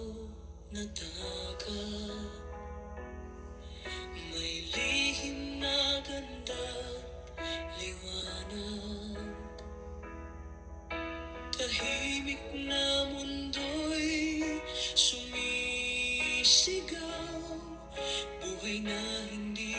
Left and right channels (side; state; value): both; identical; correlation 1.00